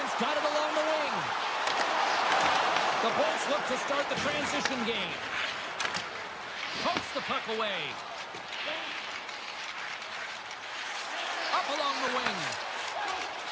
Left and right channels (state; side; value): identical; both; correlation 1.00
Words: got it along the wing. The Bolts look to start the transition game. Pokes the puck away. Up along the wing.